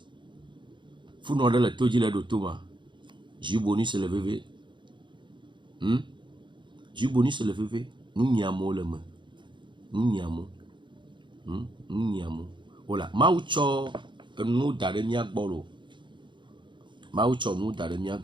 funɔ ɖe le to dzi le ɖo to ma jus bonus le veve jus bonus le veve nu nyiamo le me nu nyiamo wola mawu tsɔ enu da ɖe mia gbɔ lo mawu tsɔ nu da ɖe mia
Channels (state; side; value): late; left; 0.23 ms